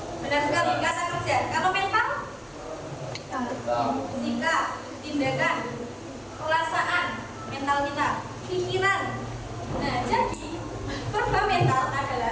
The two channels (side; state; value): both; identical; correlation 1.00